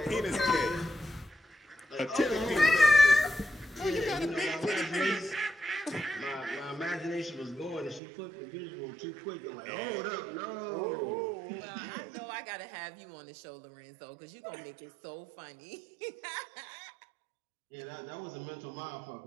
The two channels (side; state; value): left; drops out; at 8.0 s